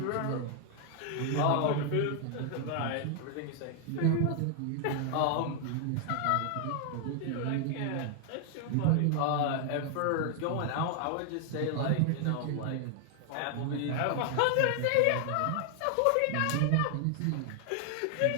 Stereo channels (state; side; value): different; both; correlation 0.00